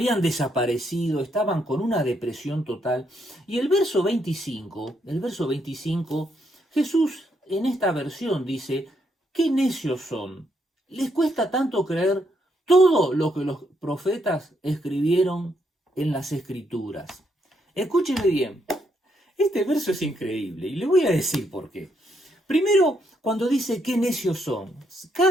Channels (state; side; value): normal; both; correlation 0.76